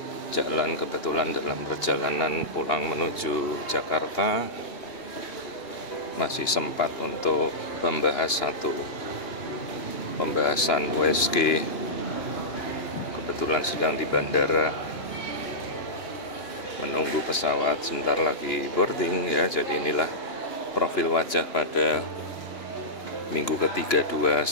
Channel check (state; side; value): late; right; 2.9 ms